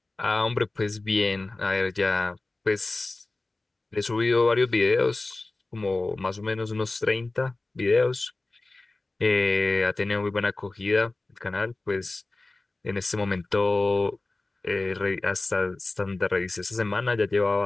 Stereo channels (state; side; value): quieter; right; 3.1 dB